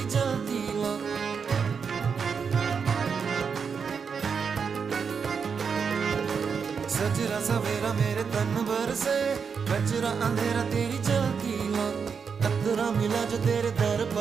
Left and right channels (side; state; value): left; quieter; 6.1 dB